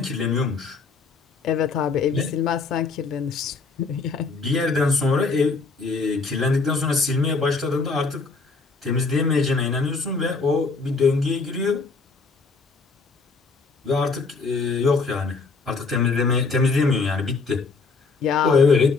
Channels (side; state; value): right; quieter; 4.3 dB